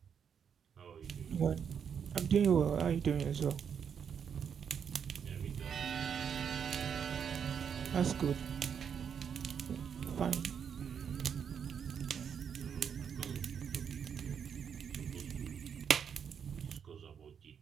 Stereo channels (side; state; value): left; quieter; 7.5 dB